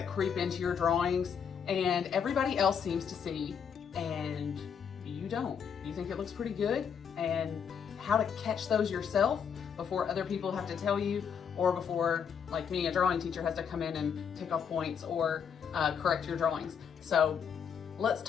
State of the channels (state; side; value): quieter; right; 7.2 dB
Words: creep into your drawings and everybody else seems to see and you don't. You think it looks pretty good, and how to catch those yourself before other people have to tell you, or before, like me, a drawing teacher has to come in and take off points or correct your drawings. So let's